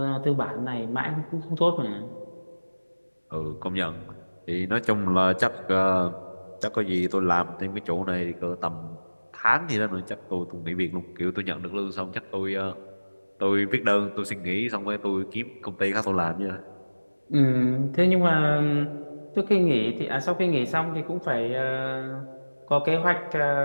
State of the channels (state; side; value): inverted; both; correlation -1.00